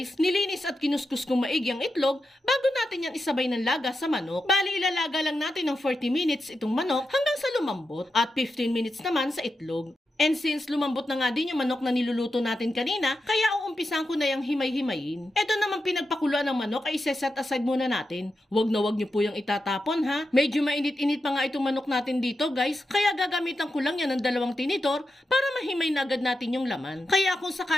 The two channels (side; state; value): both; normal; correlation 0.88